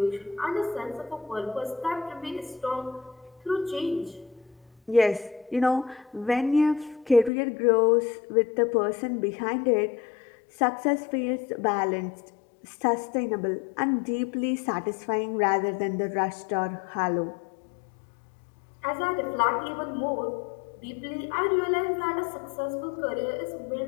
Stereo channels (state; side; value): drops out; right; at 7.3 s